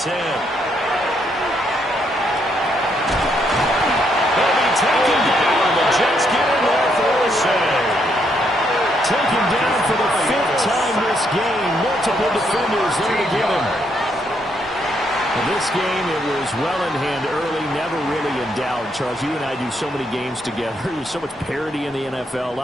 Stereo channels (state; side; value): normal; both; correlation 0.75